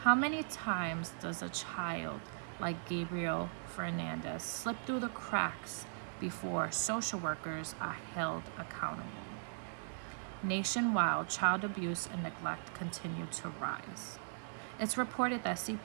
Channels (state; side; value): silent; left; 52 dB below the other